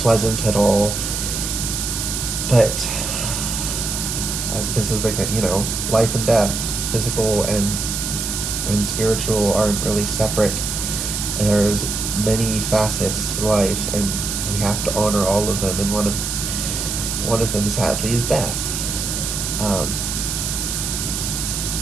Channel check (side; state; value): right; noise; hiss, 3 dB below the sound